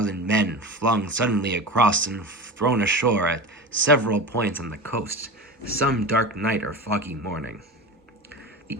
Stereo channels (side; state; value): both; normal; correlation 0.29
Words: men flung suddenly across and thrown ashore at several points on the coast, some dark night or foggy morning. The